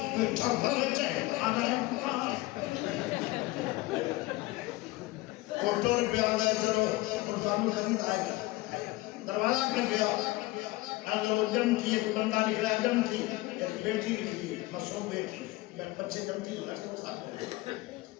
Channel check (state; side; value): quieter; right; 19.9 dB